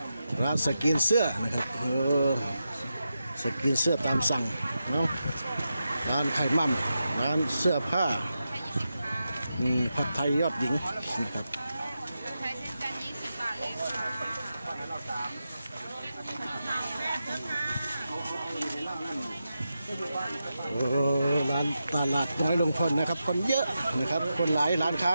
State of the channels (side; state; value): both; inverted; correlation -0.89